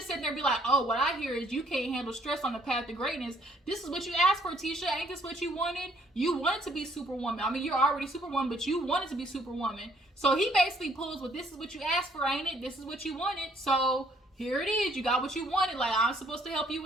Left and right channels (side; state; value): both; normal; correlation 0.64